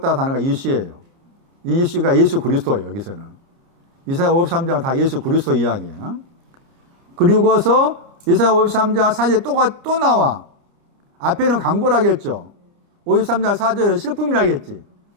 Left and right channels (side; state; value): left; late; 29 ms